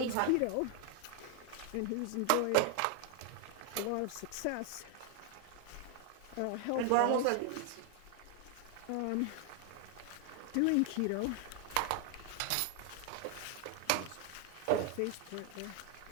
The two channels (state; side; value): different; both; correlation 0.00